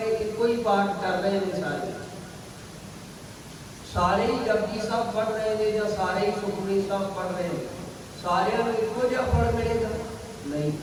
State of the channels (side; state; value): both; identical; correlation 1.00